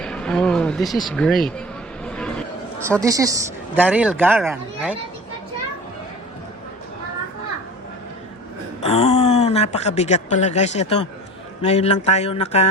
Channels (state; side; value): normal; both; correlation 0.39